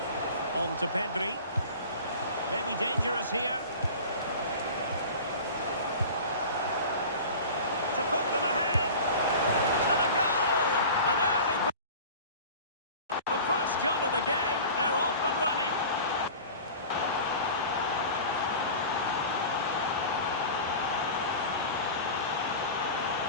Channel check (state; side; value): inverted; both; correlation -0.37